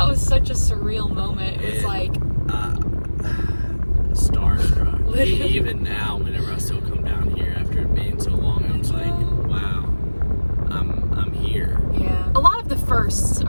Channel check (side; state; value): both; inverted; correlation -1.00